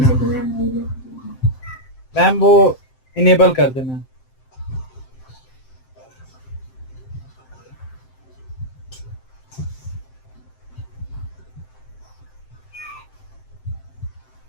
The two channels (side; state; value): right; late; 7.7 ms